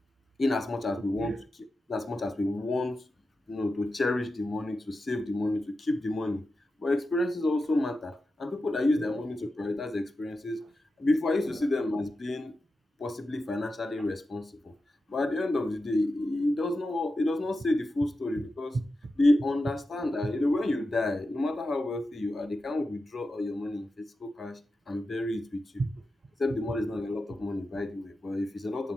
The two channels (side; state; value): both; normal; correlation 0.91